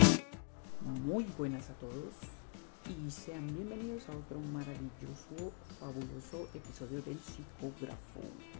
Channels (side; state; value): right; quieter; 39.6 dB